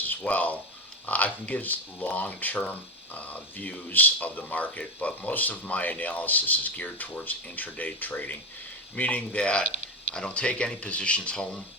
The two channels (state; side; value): normal; both; correlation 0.17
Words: as well, I can give long-term views of the market, but most of my analysis is geared towards intraday trading, meaning that I don't take any positions home